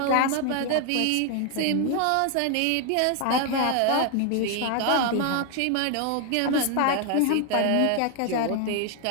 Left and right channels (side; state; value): both; different; correlation 0.00